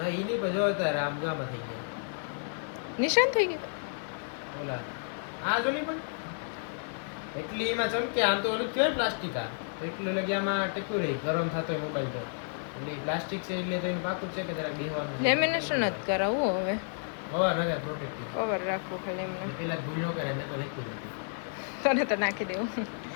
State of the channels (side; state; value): right; silent; 57 dB below the other